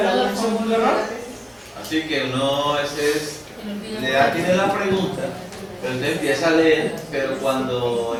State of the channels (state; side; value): identical; both; correlation 1.00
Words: un segundo error. Así que uno le da tiene la pregunta, pero usted empieza a leer, pero cuando